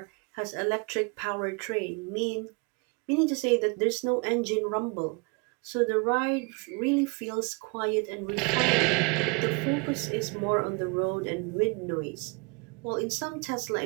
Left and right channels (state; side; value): quieter; left; 29.6 dB